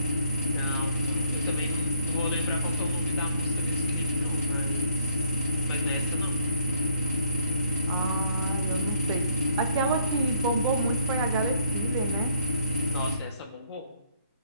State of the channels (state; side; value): inverted; both; correlation -0.64